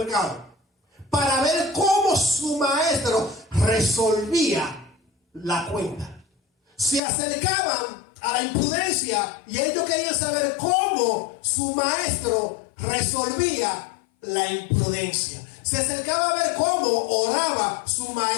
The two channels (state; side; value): drops out; right; at 7.0 s